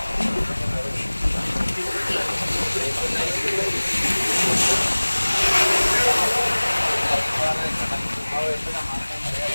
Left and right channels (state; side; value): inverted; both; correlation -1.00